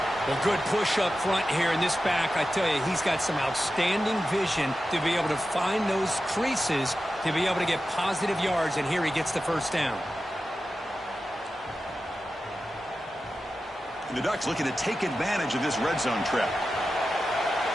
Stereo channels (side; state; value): both; normal; correlation 0.93